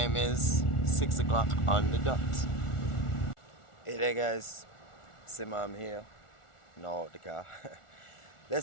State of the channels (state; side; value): late; right; 1.4 ms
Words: is 6 o'clock on the dot. Hey there guys, Simam here. No, the car.